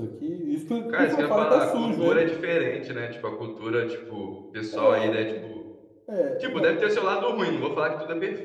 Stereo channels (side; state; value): both; identical; correlation 1.00